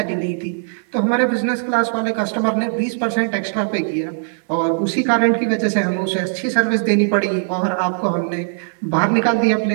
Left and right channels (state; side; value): silent; left; 61 dB below the other